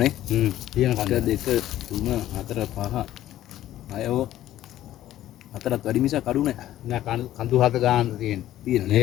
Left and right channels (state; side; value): quieter; right; 13.4 dB